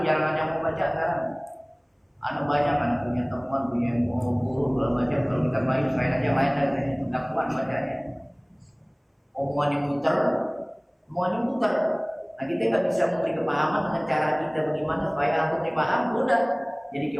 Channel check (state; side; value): identical; both; correlation 1.00